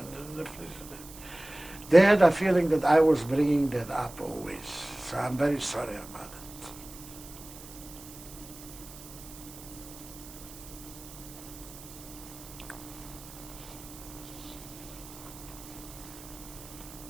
the fridge. They had a feeling that I was bringing that up always. So I'm very sorry about it.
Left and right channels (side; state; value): right; noise; hiss, 16 dB below the sound